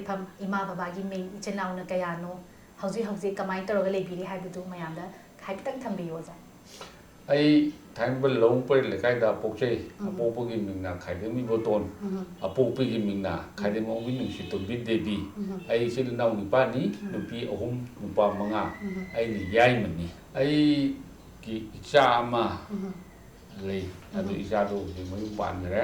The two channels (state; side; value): identical; both; correlation 1.00